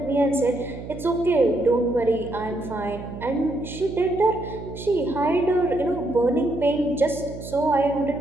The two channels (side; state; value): right; noise; hum, 11 dB below the sound